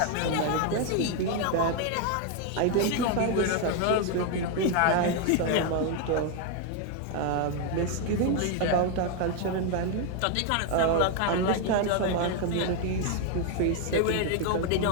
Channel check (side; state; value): both; different; correlation 0.01